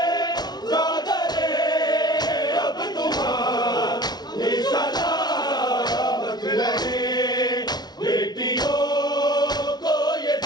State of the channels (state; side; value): late; right; 0.19 ms